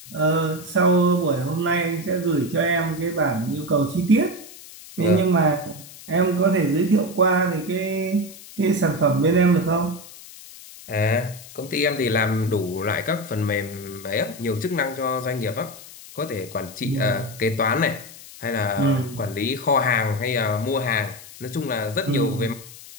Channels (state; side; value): noise; left; hiss, 17 dB below the sound